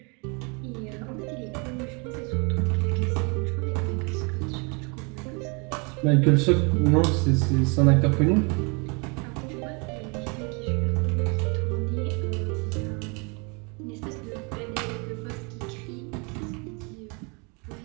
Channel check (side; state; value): left; quieter; 32.0 dB